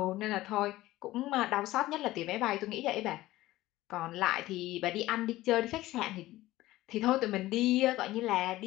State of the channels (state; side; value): quieter; right; 16.8 dB